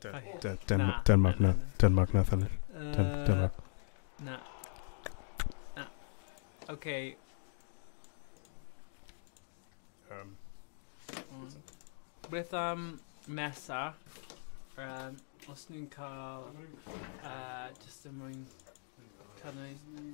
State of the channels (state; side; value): silent; right; digital silence